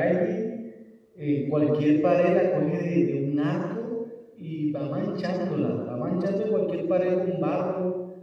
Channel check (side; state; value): both; identical; correlation 1.00